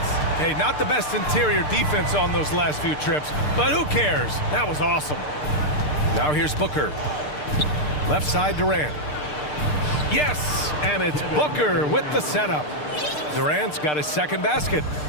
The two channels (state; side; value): late; right; 6.7 ms